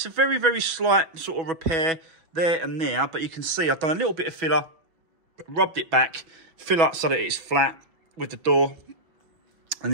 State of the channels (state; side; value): late; left; 6.2 ms